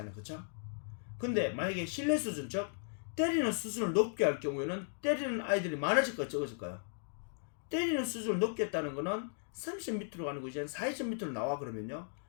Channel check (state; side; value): silent; right; digital silence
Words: 그쵸? 근데 만약에 신뢰 수준 즉 때리는 수준을 높게 할 경우에는 때리는 아이들이 많아질까요? 적어질까요? 때리는 수준을 높게 했다는 거는 30점 밑으로 가는 거 이제 40점 밑으로 나와 그러면요